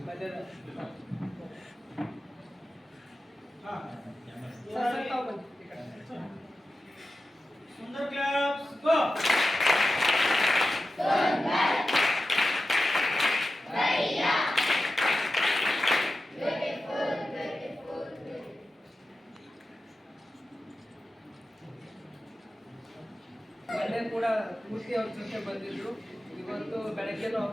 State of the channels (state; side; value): normal; both; correlation 0.93